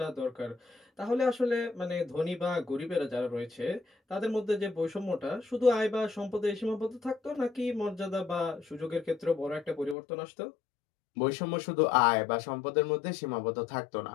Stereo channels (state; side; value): drops out; right; at 10.0 s